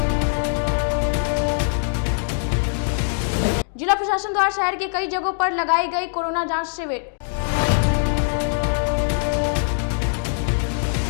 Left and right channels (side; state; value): right; silent; digital silence